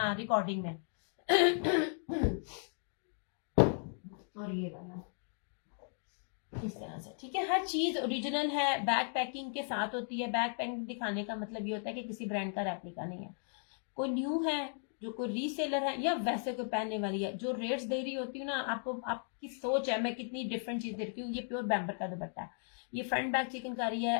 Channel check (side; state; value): right; silent; 54 dB below the other